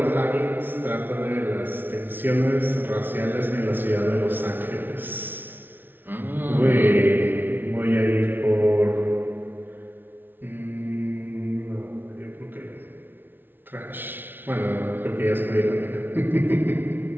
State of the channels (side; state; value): left; late; 0.097 ms